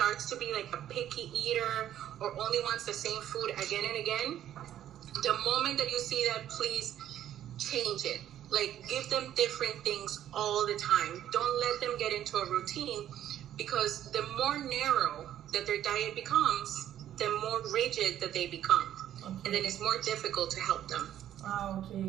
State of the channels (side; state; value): left; quieter; 11.4 dB